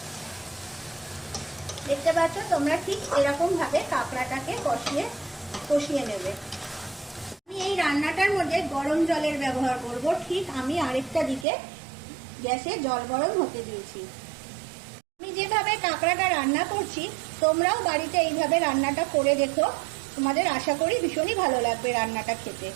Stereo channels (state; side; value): drops out; left; at 11.5 s